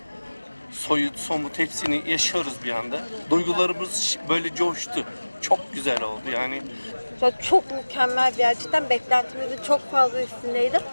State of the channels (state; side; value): inverted; both; correlation -1.00